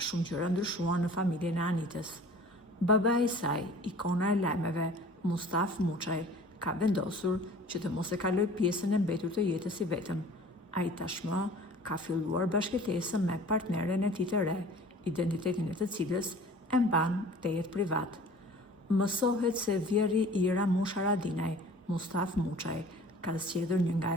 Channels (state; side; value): normal; both; correlation 0.46